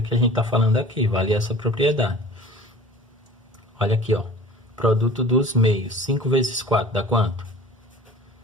que a gente está falando aqui, vale essa propriedade. Olha aqui, ó, produto dos meios, 5 vezes 4 dá quanto?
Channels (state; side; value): normal; both; correlation 0.44